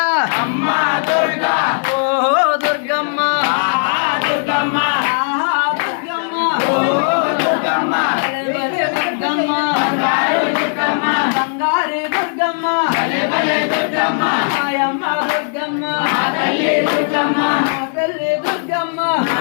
అమ్మ దుర్గా ఓ దుర్గమ్మ ఆహా దుర్గమ్మ ఆహా దుర్గమ్మ ఓ దుర్గమ్మ భలే భలే దుర్గమ్మ బంగారు దుర్గమ్మ బంగారే దుర్గమ్మ భలే భలే దుర్గమ్మ మాయమ్మ దుర్గమ్మ మా తల్లి దుర్గమ్మ మా తల్లి దుర్గమ్మ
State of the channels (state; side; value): silent; right; digital silence